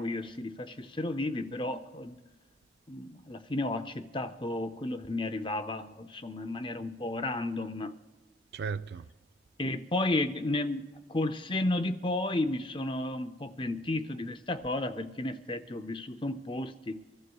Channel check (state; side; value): normal; both; correlation 0.60